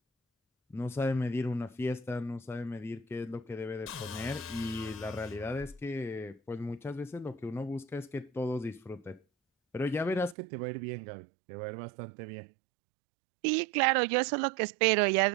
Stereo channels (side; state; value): left; drops out; at 10.4 s